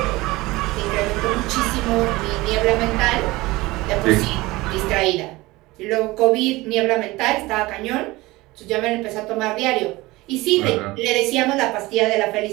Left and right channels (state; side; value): quieter; left; 20.5 dB